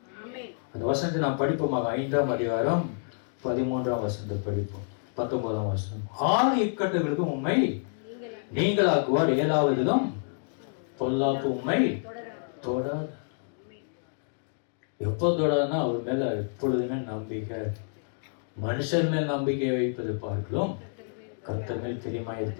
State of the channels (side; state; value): right; silent; digital silence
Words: அந்த வசனத்தை நாம் படிப்போமாக. 5ஆம் அதிகாரம் 13ஆம் வசனத்தை படிப்போம். 19ஆம் வசனம். 6 இக்கட்டுகளுக்கும் உம்மை நீங்களாக்குவார், 7வதிலும் பொல்லாப்பு உம்மை தொடாது. எப்போ தொடாதுன்னா அவர் மேல எப்பொழுதுமே நம்பிக்கை. மனுஷன் மேல் நம்பிக்கை வைப்பது பார்க்கலாம் கர்த்தர் மேல் பிரியமாய்